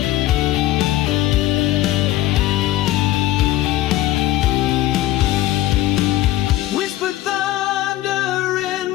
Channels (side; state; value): right; quieter; 15.2 dB